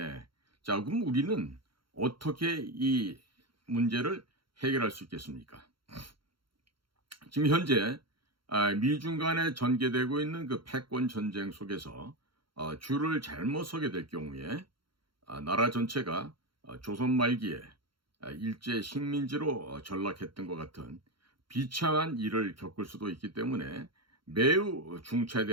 자, 그럼 우리는 어떻게 이 문제를 해결할 수 있겠습니까? 지금 현재 미중 간에 전개되고 있는 그 패권 전쟁 속에서 줄을 잘못 서게 될 경우에 나라 전체가 조선 말기에 일제 식민지로 전락했던 것 같은 비참한 일을 겪을 수도 있기 때문에 매우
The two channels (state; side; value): late; left; 0.73 ms